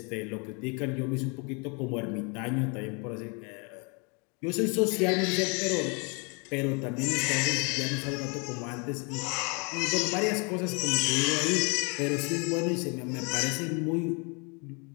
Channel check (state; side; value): quieter; right; 33.2 dB